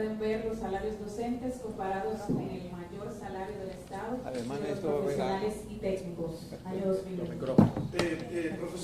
ver los salarios docentes comparados con el mayor salario del Estado, Además de de los esto, profesionales y técnicos, año 2021.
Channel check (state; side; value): identical; both; correlation 1.00